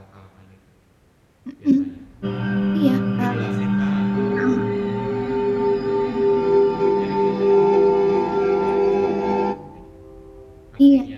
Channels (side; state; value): both; identical; correlation 1.00